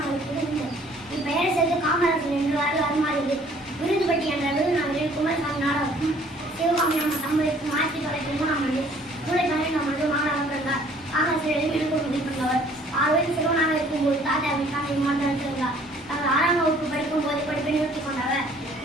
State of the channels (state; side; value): normal; both; correlation 0.57